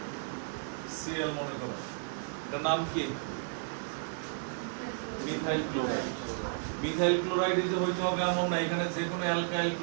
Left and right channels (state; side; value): silent; left; digital silence